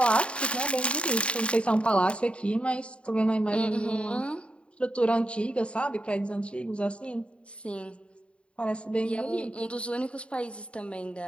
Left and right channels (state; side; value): late; right; 0.058 ms